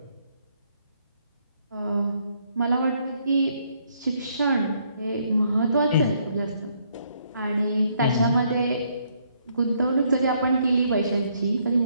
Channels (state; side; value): inverted; both; correlation -0.70